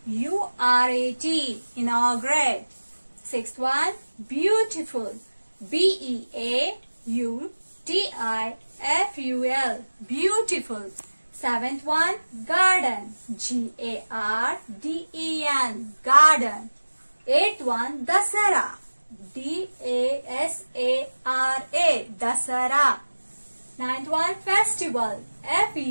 Inaugurate. Sixth one, beautiful. Beautiful. Beautiful. Seventh one, garden. Garden. Garden. Eighth one, Dasara. Dasara. Ninth one, festival.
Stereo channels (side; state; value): both; inverted; correlation -1.00